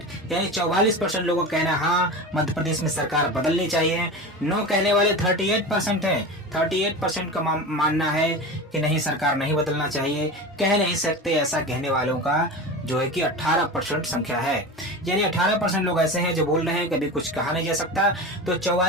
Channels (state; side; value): normal; both; correlation 0.28